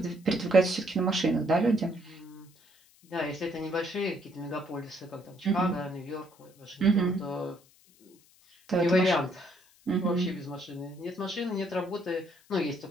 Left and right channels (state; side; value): noise; left; hiss, 29 dB below the sound